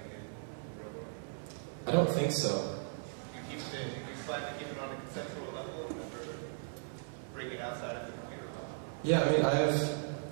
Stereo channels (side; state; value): left; silent; 53 dB below the other